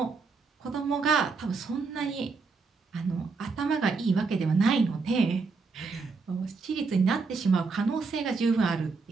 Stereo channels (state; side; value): quieter; left; 4.5 dB